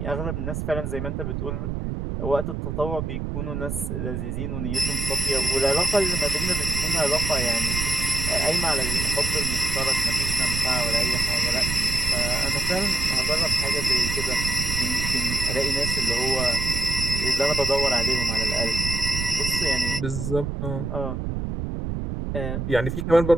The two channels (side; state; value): right; noise; rumble, 3 dB below the sound